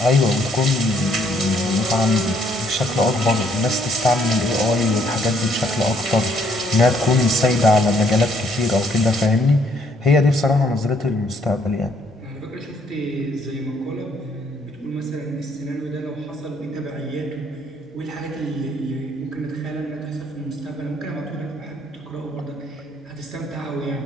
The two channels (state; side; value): normal; both; correlation 0.68